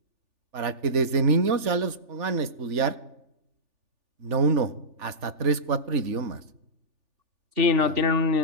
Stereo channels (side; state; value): left; late; 3.4 ms